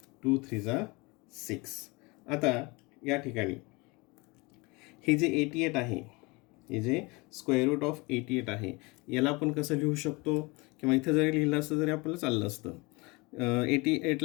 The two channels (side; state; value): right; quieter; 26.0 dB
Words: 2 3 6. आता या ठिकाणी हे जे 88 आहे, हे जे स्क्वेअर रूट ऑफ 88 आहे, याला आपण कसं लिहू शकतो, किंवा इथं जरी लिहिलं असतं तरी आपल्याला चाललं असतं.